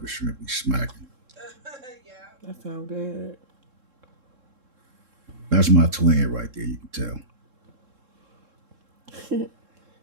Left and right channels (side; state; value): left; late; 3.7 ms